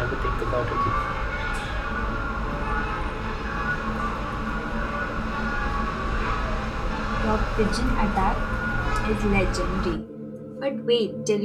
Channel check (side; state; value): both; identical; correlation 1.00